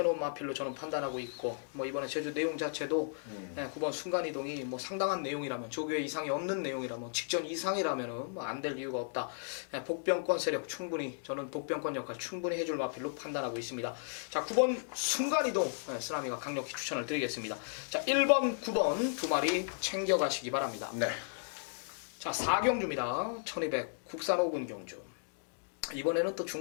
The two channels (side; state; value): right; silent; digital silence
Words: 마필로 저는 판단하고 있고 뭐 이번에 제주 내용 자체도 9번 순간이동이 뭐 상당한 내용이라면 조교에 이상이 없는 내용이라면 직전 이상이라면 뭐 안 될 이유가 없다. 복병권 세력 충분히 저는 복병권 역할 충분히 해줄 마필로 판단하고 있습니다. 자, 9번 순간이동 쓰나미가 강력히 추천을 드리겠습니다. 자, 1번 9번 두 마리 챙겨가시기 바랍니다. 네. 자, 4경주입니다. 1200 국산 5군 경주. 이번에는 또